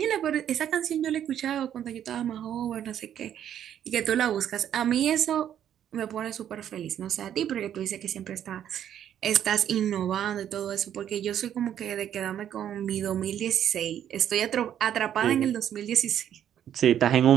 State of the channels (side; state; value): left; quieter; 10.1 dB